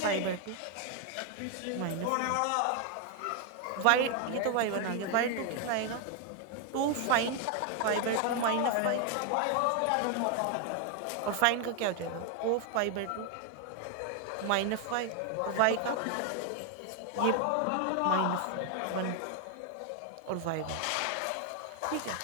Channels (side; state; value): both; different; correlation 0.00